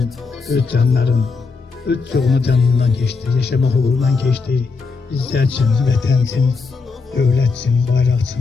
öz canların, öz çoğunu canından geçti, yaşama uğrundan geçti. Bizler için, vətən için, dövlət için, bayraq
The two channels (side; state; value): right; quieter; 4.5 dB